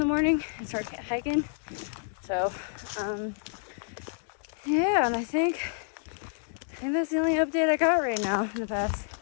morning and start hiking. So yeah, and I think that's the only update I got right now in the past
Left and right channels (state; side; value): silent; right; digital silence